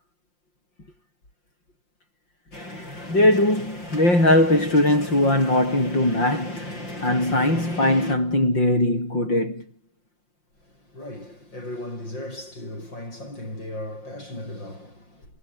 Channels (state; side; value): late; right; 5.7 ms